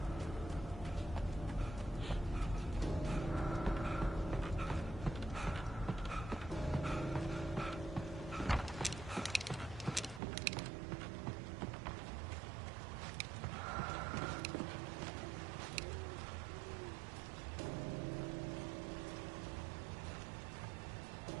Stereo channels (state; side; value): drops out; left; at 10.2 s